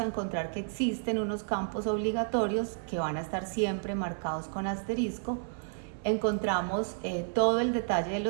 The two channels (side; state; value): left; silent; 57 dB below the other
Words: encontrar que existen unos campos obligatorios que van a estar siempre marcados con asterisco. Encontramos todo el detalle de